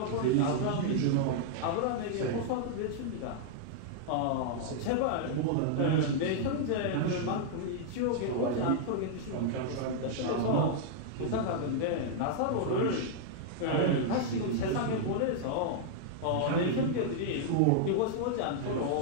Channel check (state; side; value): different; both; correlation -0.01